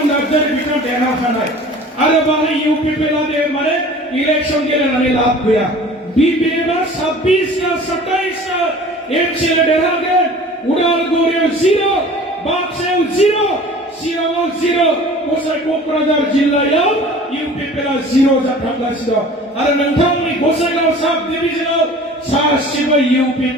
नार्जारी बिथाङा देरहाखानाय आरो बाहाय इउपिपिएल दे माने इलेक्शन गेलेनानै लाब गैया बिबिएमआ 26 ना 27 ना एमसीएल देरहागोन उदालगुरियाव 0 बाक्सायाव 0 चिराङाव 0 गसाइ कक्राझार जिल्लायाव इउपिपिएल 0 जाथारगासिनो आरो नोंथांमोननि गसाइगाव साब डिभिजनाव सासेबो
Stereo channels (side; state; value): both; normal; correlation 0.44